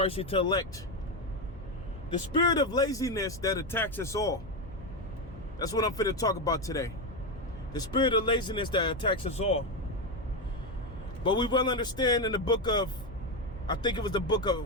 to elect. The spirit of laziness that attacks us all. That's what I'm finna talk about today. The spirit of laziness that attacks us all. But we will understand in the book of, I think it was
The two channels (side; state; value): left; noise; hum, 17 dB below the sound